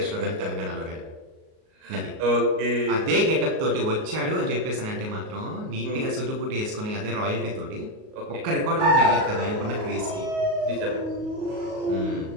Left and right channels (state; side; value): late; left; 38 ms